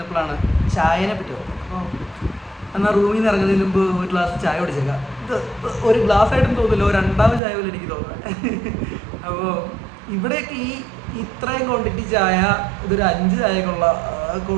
ചായനെ പറ്റി ഓർത്തത്. അപ്പോൾ എന്നാൽ റൂമിൽ നിന്ന് ഇറങ്ങുന്നതിന് മുമ്പ് ഒരു ഗ്ലാസ് ചായ കുടിച്ചേക്കാം. ഇത് ഒരു ഗ്ലാസ് ആയിട്ടും തോന്നില്ല, ഒരു രണ്ടാമത് ചായ പോലെ എനിക്ക് തോന്നുന്നത്. അപ്പോൾ ഇവിടെയൊക്കെ ഇത്രയും ക്വാണ്ടിറ്റി ചായ ഇതൊരു 5 ചായക്കുള്ള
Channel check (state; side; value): drops out; left; at 7.4 s